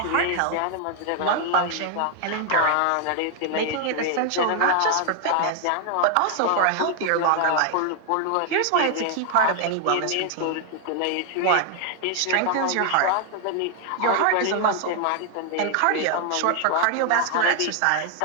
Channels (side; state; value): both; different; correlation 0.00